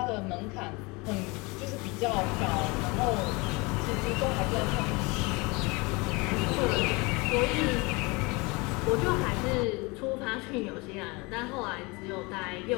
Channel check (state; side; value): quieter; right; 26.4 dB